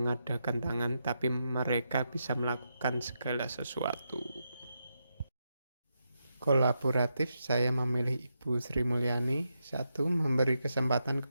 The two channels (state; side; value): inverted; both; correlation -0.85